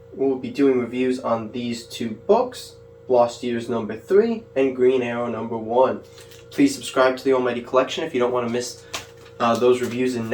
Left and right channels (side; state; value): both; identical; correlation 1.00